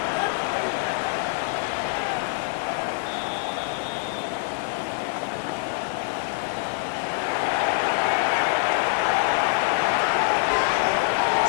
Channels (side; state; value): right; silent; 60 dB below the other